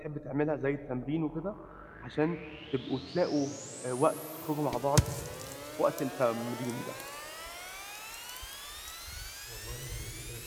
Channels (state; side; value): identical; both; correlation 1.00